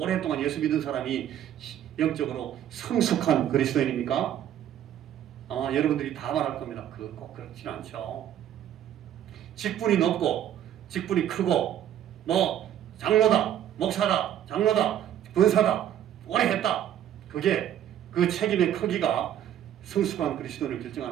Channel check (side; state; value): left; quieter; 10.9 dB